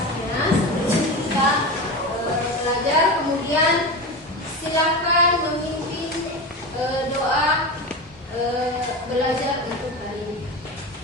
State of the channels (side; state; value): both; normal; correlation 0.24